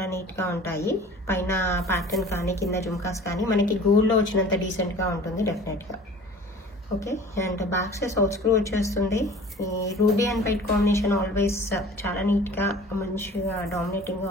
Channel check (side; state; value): both; normal; correlation 0.45